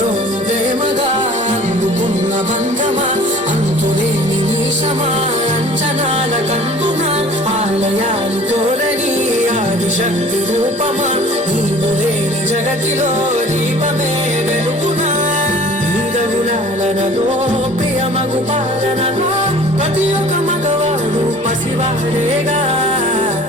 ప్రేమగా అందుకున్న బంధమా అంతులేని నీశమా అంచనాల కందున ఆలయాలు కోరని ఆదిశక్తి రూపమా నీవు లేని జగతిలో దీపమే వెలుగునా నీదగులాలనలో ప్రియమగు పాలనలో ప్రతి ఒక్క మగవాడు పసివాడేగా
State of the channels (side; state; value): both; normal; correlation 0.48